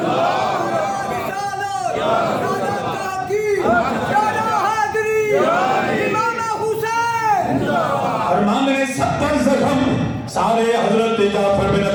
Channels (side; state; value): both; identical; correlation 1.00